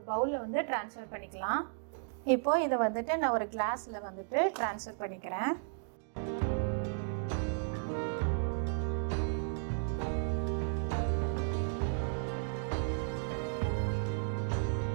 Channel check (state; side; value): silent; left; digital silence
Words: பவுலில் ட்ரான்ஸ்ஃபர் பண்ணிக்கலாம். இப்போது இதை நான் ஒரு கிளாஸில் ட்ரான்ஸ்ஃபர் பண்ணிக்கிறேன்.